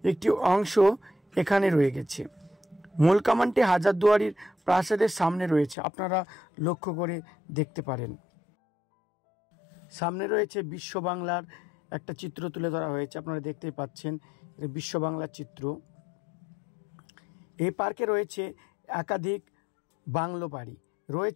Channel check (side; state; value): right; drops out; at 5.8 s